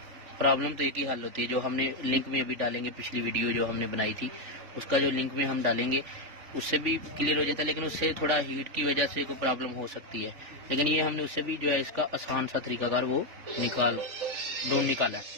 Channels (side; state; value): left; late; 3.4 ms